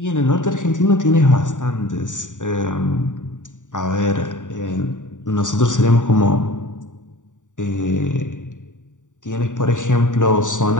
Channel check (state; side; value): late; right; 0.86 ms